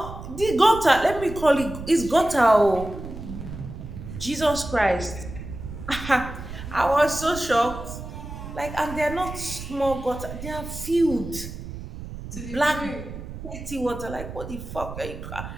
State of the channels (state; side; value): noise; right; rumble, 10 dB below the sound